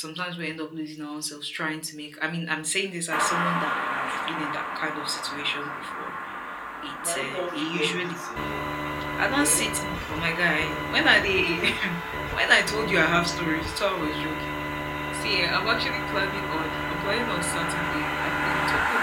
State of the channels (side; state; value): both; identical; correlation 1.00